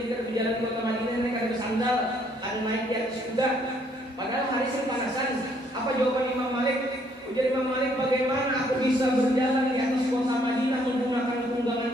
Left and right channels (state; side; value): normal; both; correlation 0.67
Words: berjalan di kota Madinah naik ada sandal, ada naik di atas kuda? Padahal hari panasan. Apa jawaban Imam Malik? Ujar Imam Malik, bagaimana aku bisa berjalan di atas kota Madinah menggunakan tunggangan